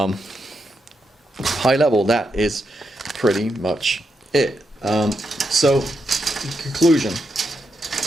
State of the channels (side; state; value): both; normal; correlation 0.83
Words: High level, that is pretty much it. So, in conclusion,